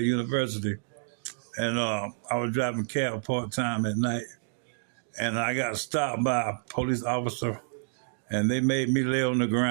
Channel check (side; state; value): left; silent; 59 dB below the other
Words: University, and I was driving cab part time at night, and I got stopped by a police officer, and they made me lay on the